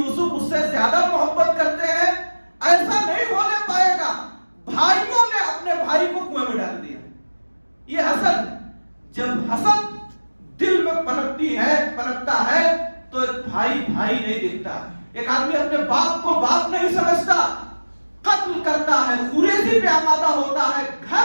اس سے زیادہ محبت کرتے ہیں، ایسا نہیں ہونے پائے گا۔ بھائیوں نے اپنے بھائی کو کنویں میں ڈال دیا۔ یہ حسد، جب حسد دل میں پنپتا ہے تو ایک بھائی نہیں دکھتا۔ ایک آدمی اپنے باپ کو باپ نہیں سمجھتا، قتل کرتا ہے، خوریزی پہ آمادہ ہوتا ہے،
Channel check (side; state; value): both; inverted; correlation -1.00